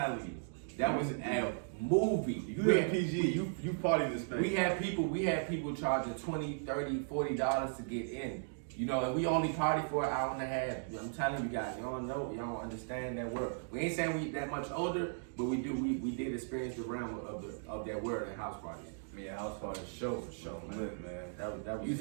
you, that was a movie. You live in PG, you party this thing. We had people charging $20, $30, $40 to get in. You know, and we only party for an hour and a half. I'm telling you guys, y'all know, y'all don't understand that word. We ain't saying we that much older, but we did experience the realm of that word in house parties. Yeah, house party Show, man. lit, man. That was You used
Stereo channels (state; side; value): silent; left; digital silence